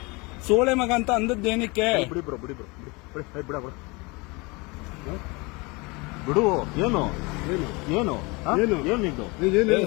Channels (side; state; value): right; quieter; 26.5 dB